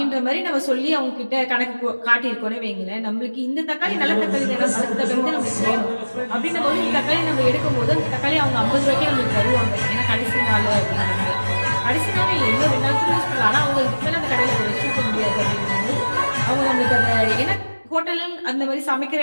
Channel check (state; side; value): inverted; both; correlation -1.00